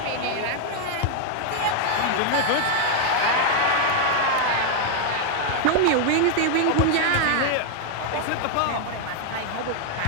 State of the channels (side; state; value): both; different; correlation 0.00